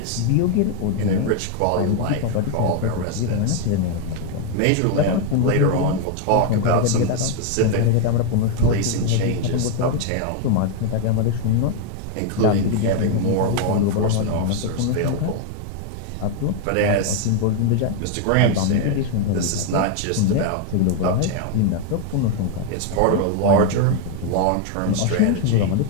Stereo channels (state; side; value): different; both; correlation 0.01